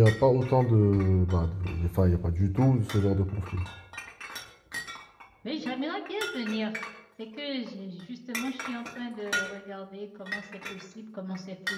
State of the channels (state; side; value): identical; both; correlation 1.00